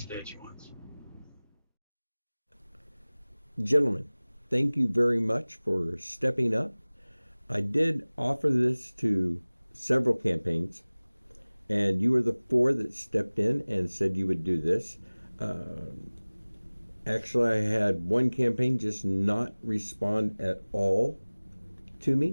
Gentlemen, thank you very much for stepping up. I did offer this to several campaigns, and you were the 4 that stepped in and said you would do this. Actually, I had one campaign just not respond at all to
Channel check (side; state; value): both; inverted; correlation -1.00